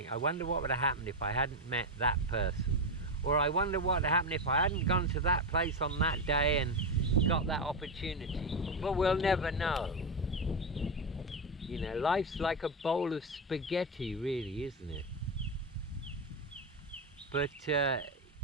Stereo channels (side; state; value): both; normal; correlation 0.10